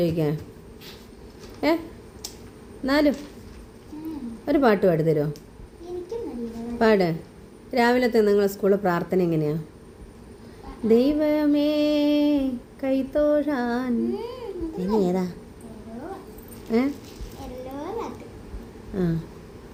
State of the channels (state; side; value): identical; both; correlation 1.00